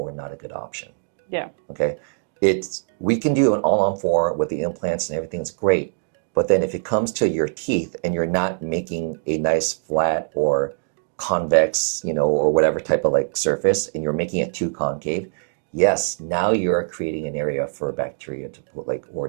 not a good option. Yeah. Okay. We can do an all-on-4 with the implants and everything's great. But then if it comes to your teeth and you're not making a nice flat or convex, you know, or whatever type of like surface, and you're making it too concave, yes, now you're creating an area for bacteria to pull, like, or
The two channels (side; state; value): left; silent; digital silence